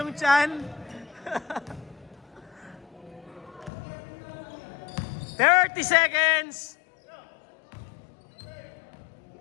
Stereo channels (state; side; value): drops out; right; at 3.7 s